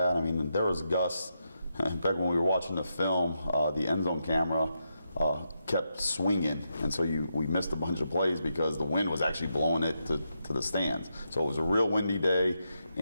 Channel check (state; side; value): inverted; both; correlation -0.84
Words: I mean, there was gusts. In fact, when we were watching the film, the end zone camera kept swinging, and so we missed a bunch of plays because the wind was actually blowing it to the stands. So it was a real windy day,